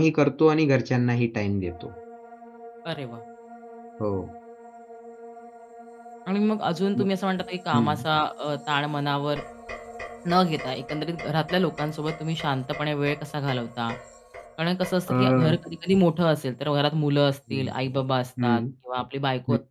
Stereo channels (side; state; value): both; identical; correlation 1.00